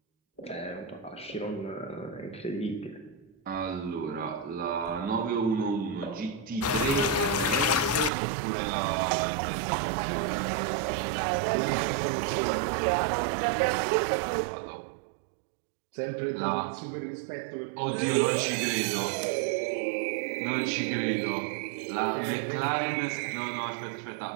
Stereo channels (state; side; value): drops out; left; at 8.1 s